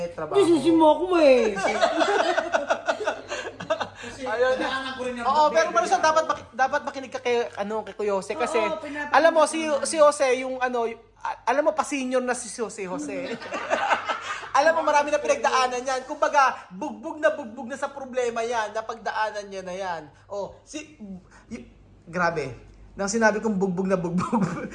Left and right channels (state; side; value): identical; both; correlation 1.00